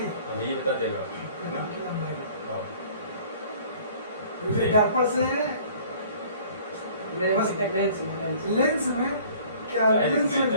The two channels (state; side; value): inverted; both; correlation -0.52